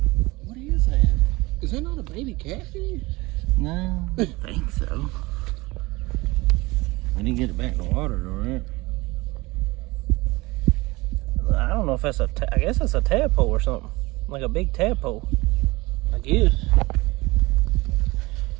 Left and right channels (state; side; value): quieter; left; 22.2 dB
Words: What is that? Is that not a baby catfish? No, I don't think so. I didn't get it back in the water though, right? I don't know if that's I guess that's a tadpole or something. Like a big tadpole, I guess.